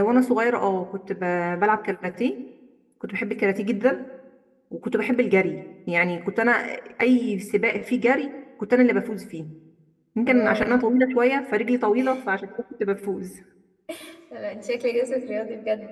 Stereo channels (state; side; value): identical; both; correlation 1.00